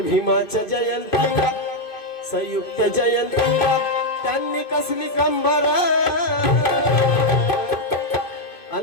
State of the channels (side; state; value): right; late; 2.5 ms